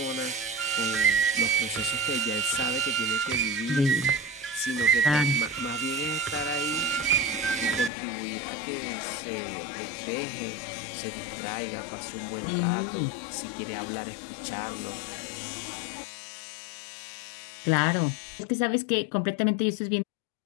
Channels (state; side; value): drops out; right; at 7.9 s